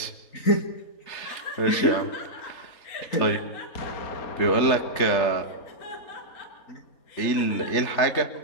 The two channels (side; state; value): right; late; 3.4 ms